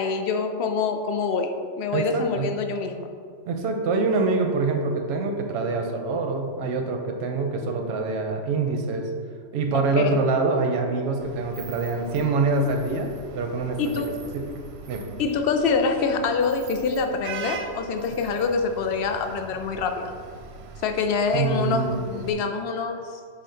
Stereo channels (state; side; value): late; left; 3.0 ms